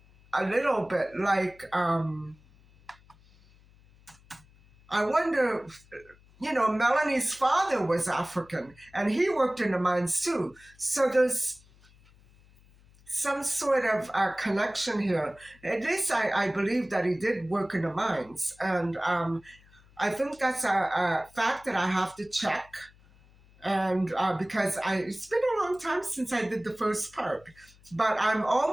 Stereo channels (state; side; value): noise; left; hum, 27 dB below the sound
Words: a little bit like, I wonder, Melanie's father was African and he worked in the mines too. So there's some sort of connection here. At least I believe that he did work in the mines. And I think that's a fact that I have to check. And because it's been a long time since I did the first part. But I'm